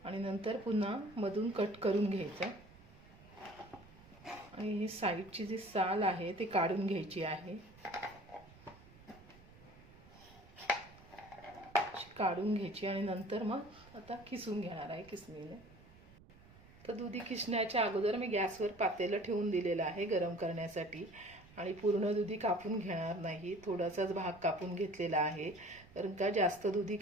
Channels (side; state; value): right; noise; rumble, 22 dB below the sound